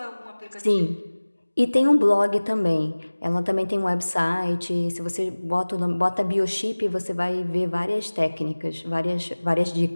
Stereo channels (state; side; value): inverted; both; correlation -1.00